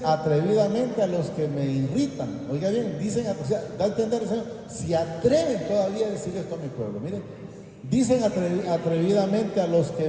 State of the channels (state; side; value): identical; both; correlation 1.00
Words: atrevidamente a los que me irritan. Oiga bien, dicen, o sea, da a entender el Señor, si atreven todavía a decir esto a mi pueblo. Miren, dicen atrevidamente a los